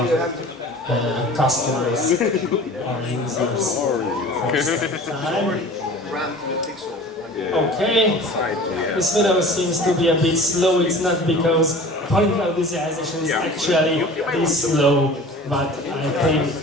customers, our users. Okay, this video seems to be a bit slow. It's not because polygonal visualization is actually this slow, but I think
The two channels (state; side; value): normal; both; correlation 0.42